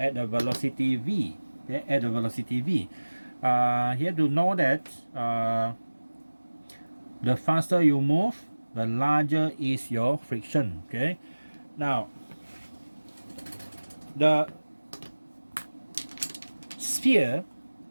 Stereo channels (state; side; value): inverted; both; correlation -1.00